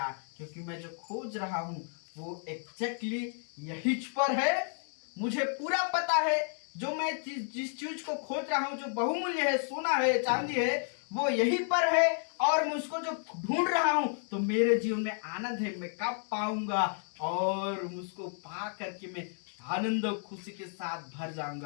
क्योंकि मैं जो खोज रहा हूं वो एग्जैक्टली यही पर है। मुझे पूरा पता है जो मैं जिस चीज को खोज रहा हूं, जो बहुमूल्य है, सोना है, चांदी है, वो यहीं पर है, और मैं उसको जो ढूंढ रहा हूं तो मेरे जीवन में आनंद है। मैं कब पाऊंगा और उसको पा करके मैं आनंद और खुशी के साथ भर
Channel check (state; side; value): silent; right; 56 dB below the other